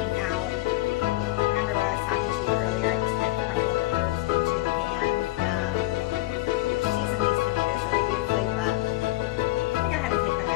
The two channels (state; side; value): quieter; right; 18.5 dB